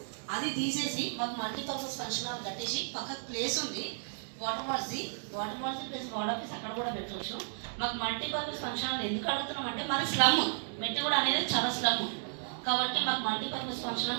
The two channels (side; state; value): left; silent; digital silence